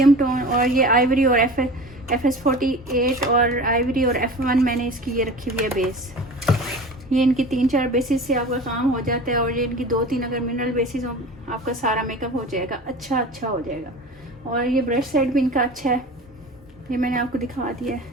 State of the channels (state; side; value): normal; both; correlation 0.36